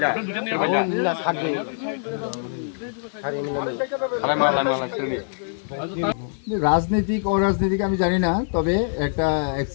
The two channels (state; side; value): silent; right; 61 dB below the other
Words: जा আপনি দুটো নিয়ে ভাইয়া ला साथ दे আরে মালা মালা সেরলে রাজনৈতিক অরাজনৈতিক আমি জানি না তবে একটা